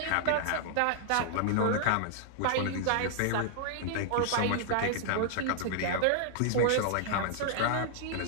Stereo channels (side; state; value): both; different; correlation -0.01